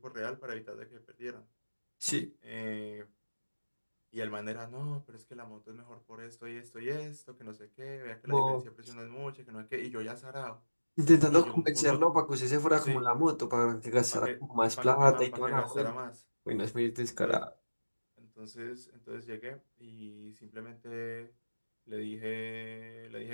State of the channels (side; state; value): both; inverted; correlation -1.00